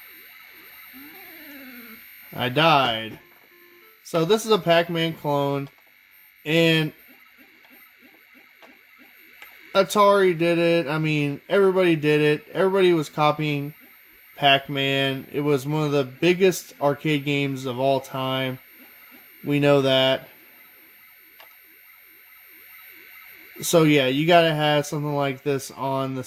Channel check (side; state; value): both; identical; correlation 1.00